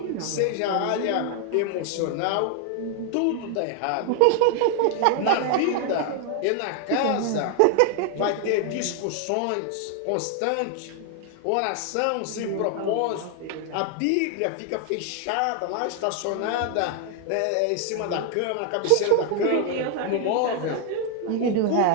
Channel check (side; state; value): both; different; correlation 0.00